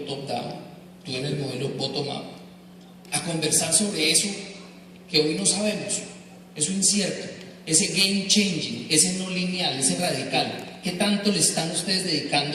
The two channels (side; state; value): both; identical; correlation 1.00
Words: top-down, tú en el modelo bottom-up, a conversar sobre eso que hoy no sabemos, eso incierto, ese game changing, ese no lineal, ese radical? ¿Qué tanto le están ustedes